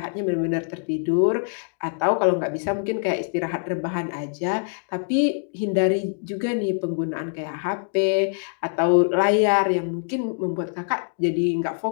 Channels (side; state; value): right; silent; digital silence